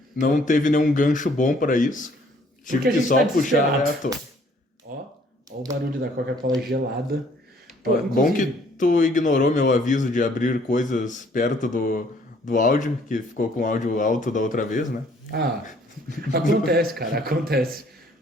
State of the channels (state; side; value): normal; both; correlation 0.61